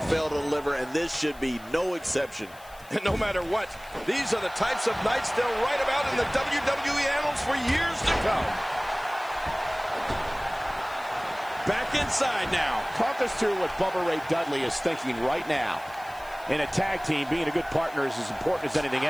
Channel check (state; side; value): noise; left; hiss, 23 dB below the sound